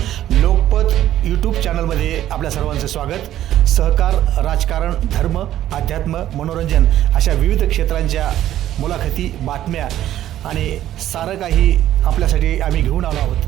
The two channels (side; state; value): left; quieter; 12.5 dB